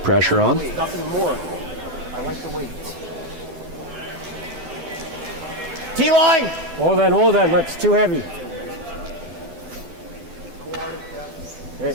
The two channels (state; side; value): late; left; 7.9 ms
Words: on. Nothing more. I like the weight. T-line! Hold on, that's too heavy.